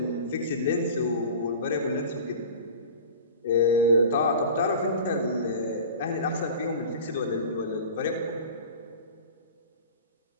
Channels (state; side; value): inverted; both; correlation -0.38